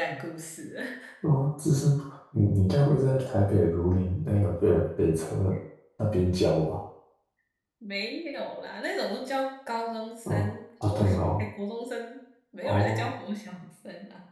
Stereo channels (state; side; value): identical; both; correlation 1.00